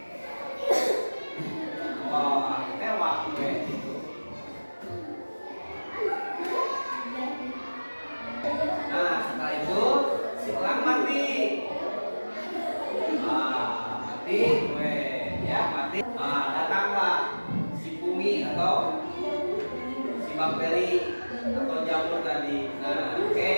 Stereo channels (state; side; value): inverted; both; correlation -1.00